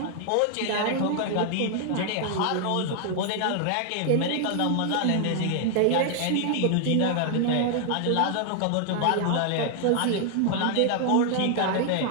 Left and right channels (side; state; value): both; different; correlation 0.00